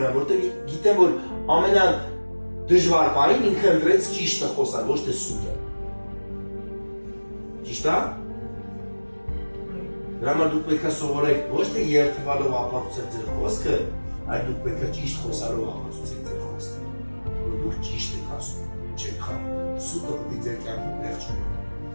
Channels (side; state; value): both; inverted; correlation -1.00